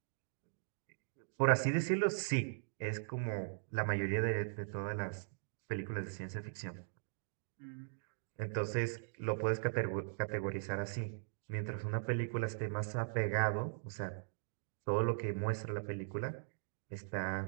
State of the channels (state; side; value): silent; left; digital silence